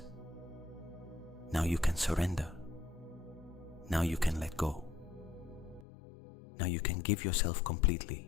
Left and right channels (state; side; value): drops out; right; at 5.9 s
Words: now you can surrender. Now you can let go. Now you can give yourself